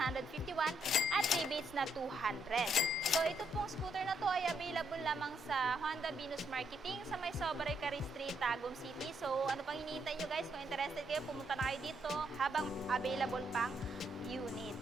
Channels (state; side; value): normal; both; correlation 0.75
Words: at rebates na 200. So, ito pong scooter na to ay available lamang sa Honda Venus Marketing sa may Sobrey Cari Street, Tagum City. So, ano pang hinihintay nyo guys? Kung interested kayo, pumunta na kayo dito habang available pang unit.